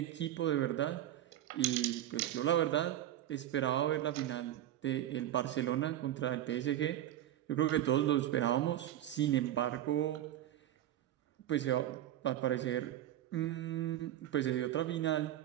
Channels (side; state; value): left; quieter; 12.5 dB